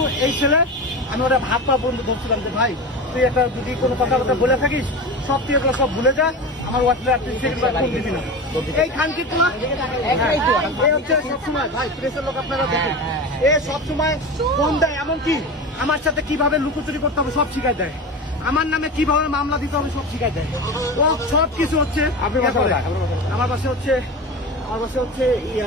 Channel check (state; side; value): normal; both; correlation 0.27